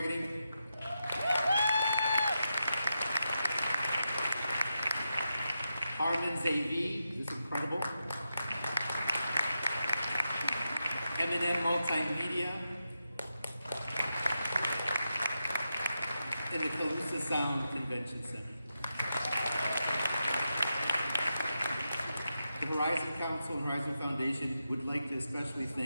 Armin Zavi, who's incredible. M&M Multimedia. And the Calusa Sound Convention Center. The Horizon Council and Horizon Foundation would like to especially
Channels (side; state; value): both; inverted; correlation -0.88